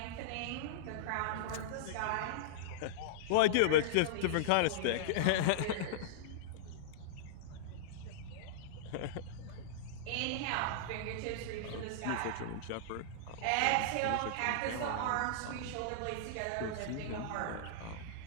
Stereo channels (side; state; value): both; different; correlation -0.02